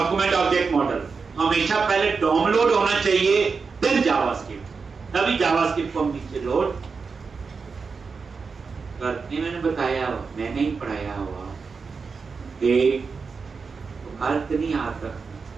object model. हमेशा पहले डॉम लोड होना चाहिए, देन जावास्क्रिप्ट, तभी जावास्क्रिप्ट को हम नीचे लोड करते। मैंने बताया, मैंने ही पढ़ाया हुआ। देख तो अर्थ नहीं आता,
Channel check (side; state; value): left; quieter; 5.0 dB